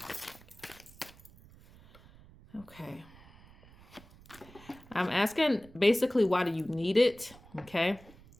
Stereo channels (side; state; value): right; noise; rumble, 23 dB below the sound